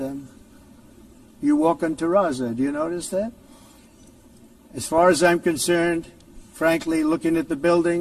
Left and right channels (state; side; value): identical; both; correlation 1.00